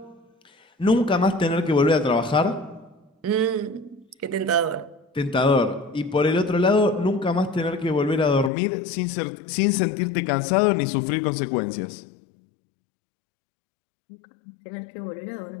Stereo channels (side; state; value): right; drops out; at 8.5 s